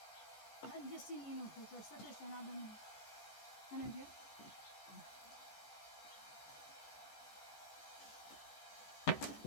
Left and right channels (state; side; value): late; right; 14 ms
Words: بود جسین اینو خوش وسطش شنا دنیا هنه بیا